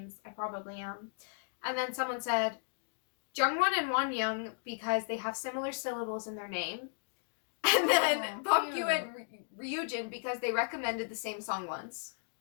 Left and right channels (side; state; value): right; silent; digital silence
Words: I probably am. And then someone said Jungwon and Wonyoung because they have similar syllables in their name. And then Bomgyu and Ryujin because they recommended the same song once.